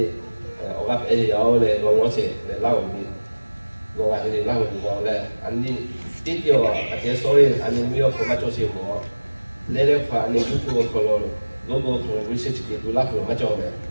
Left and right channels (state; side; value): inverted; both; correlation -1.00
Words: 我家有咧，我是嚟拉後面，我話佢哋拉後面講咧，安尼啲條啊，或者所以安尼沒有咁乜做事我，你咧話你要付我可能，嗰個可能會識啲都拉後乜做咩，